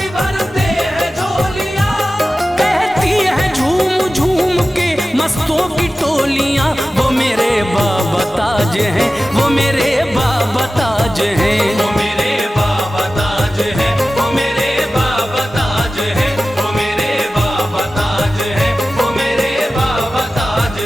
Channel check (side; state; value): both; normal; correlation 0.95